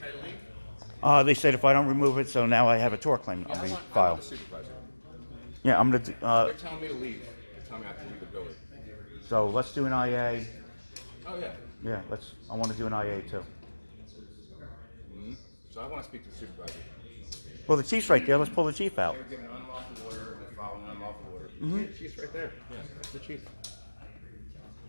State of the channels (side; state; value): both; inverted; correlation -1.00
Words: you to leave? They said if I don't remove it, so now I have a tort claim on the file. the supervisor. Yeah, I'm gonna. They're telling me to leave. They're telling me I have to leave the building. So let's do an IA. Oh, yeah. Yeah, I want to do an IA too. So I want to speak to the supervisor. Well, the chief's right there. Let's pull the chief out. They were given unlawful order, and they're following unlawful order. Yeah, the chief's right there. Yeah, that's the chief.